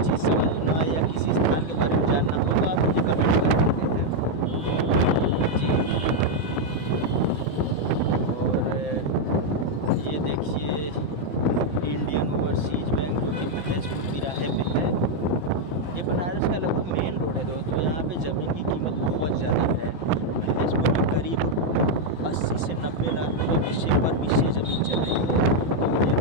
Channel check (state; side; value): late; left; 5.9 ms